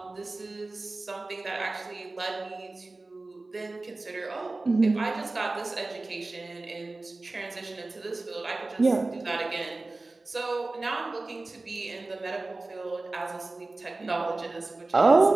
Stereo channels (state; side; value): quieter; left; 3.2 dB